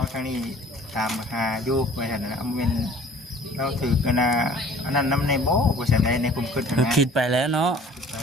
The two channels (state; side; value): normal; both; correlation 0.50